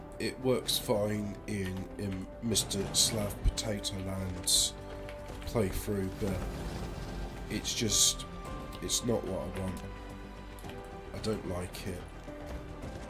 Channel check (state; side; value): identical; both; correlation 1.00